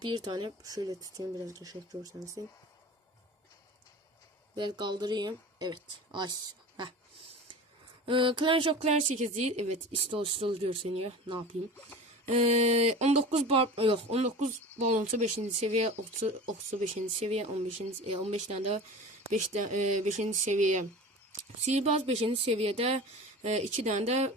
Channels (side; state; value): both; normal; correlation 0.35